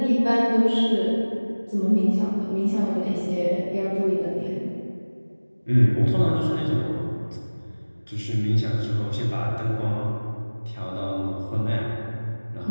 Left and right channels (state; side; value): inverted; both; correlation -1.00